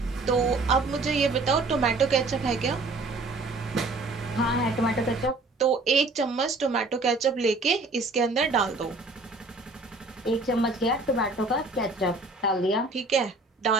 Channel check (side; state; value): left; quieter; 3.3 dB